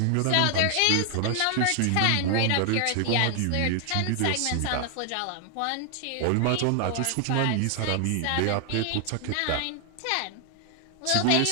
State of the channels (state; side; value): different; both; correlation 0.00